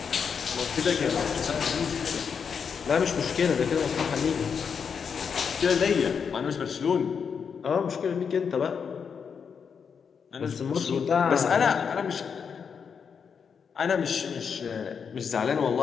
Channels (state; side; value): quieter; right; 6.5 dB